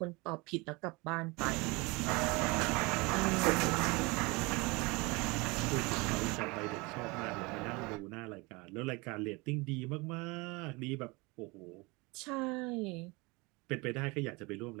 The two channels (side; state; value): left; quieter; 25.8 dB